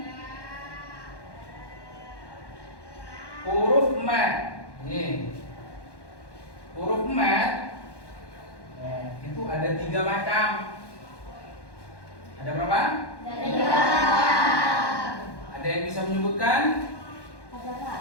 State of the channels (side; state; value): right; late; 1.1 ms